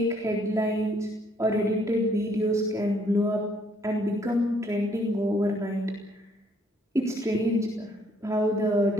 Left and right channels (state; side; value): normal; both; correlation 0.66